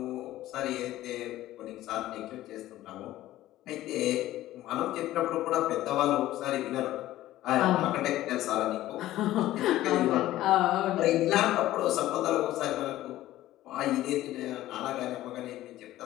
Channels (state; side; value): quieter; right; 14.9 dB